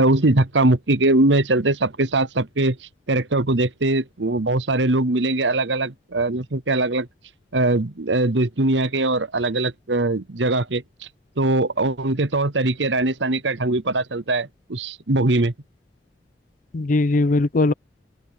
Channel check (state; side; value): normal; both; correlation 0.23